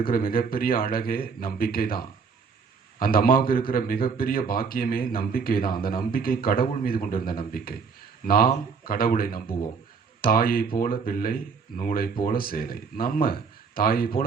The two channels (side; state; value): left; quieter; 5.4 dB